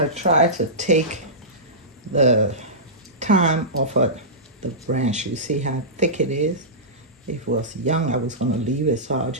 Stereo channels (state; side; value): normal; both; correlation -0.18